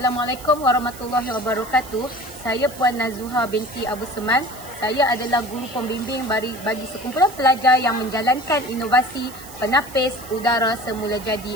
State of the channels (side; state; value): right; noise; hiss, 17 dB below the sound